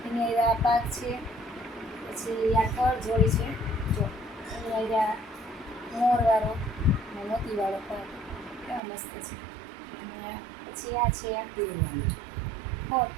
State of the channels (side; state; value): left; drops out; at 8.8 s